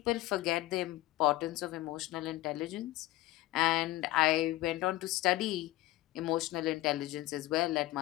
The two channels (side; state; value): right; quieter; 17.2 dB